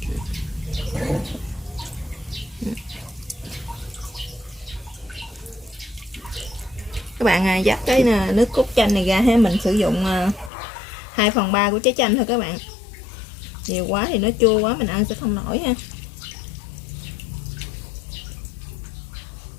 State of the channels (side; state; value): right; drops out; at 10.5 s